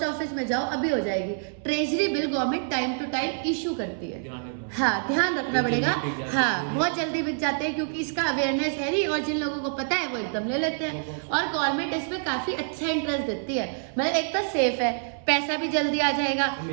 ऑफिस में जाओ अभी हो जाएगी। Treasury bill government time to time issue करती है। ध्यान रखना। हाँ, ध्यान रखना ये पड़ेगा। जल्दी बिक जाते हाँ, हैं। बहुत जल्दी बिक जाते हैं क्योंकि इसका अवेयरनेस है नहीं, और जिन लोगों को पता है वो एकदम ले लेते हैं। और गवर्नमेंट इसमें काफी अच्छा इंटरेस्ट देती है। मतलब एक तो सेफ है, पैसा भी जल्दी आ जाएगा।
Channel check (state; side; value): silent; left; 60 dB below the other